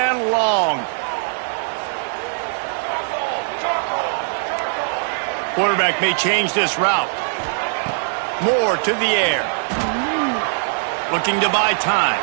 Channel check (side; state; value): left; silent; digital silence